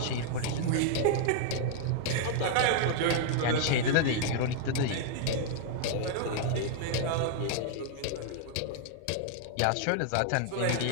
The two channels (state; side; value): different; both; correlation -0.01